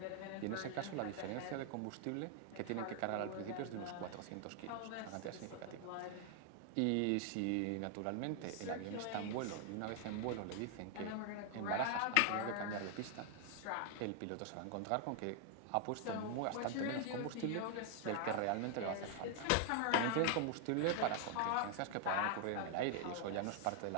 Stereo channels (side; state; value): both; different; correlation 0.00